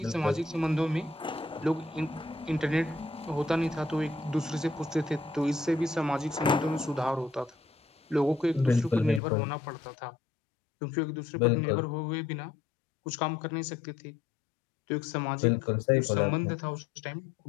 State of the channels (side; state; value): right; drops out; at 9.2 s